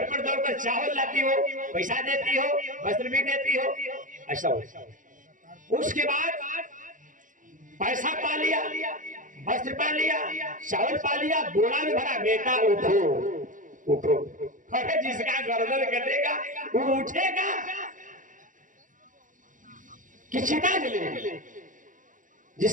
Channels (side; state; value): left; late; 0.38 ms